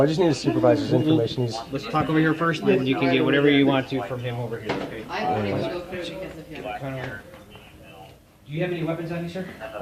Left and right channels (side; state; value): both; identical; correlation 1.00